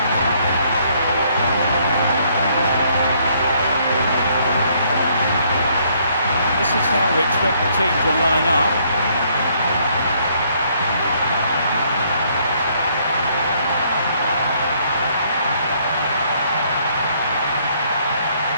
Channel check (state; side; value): inverted; both; correlation -0.67